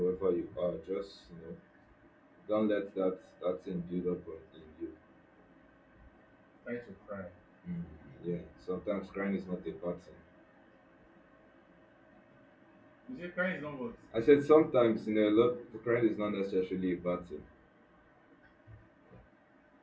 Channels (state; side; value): identical; both; correlation 1.00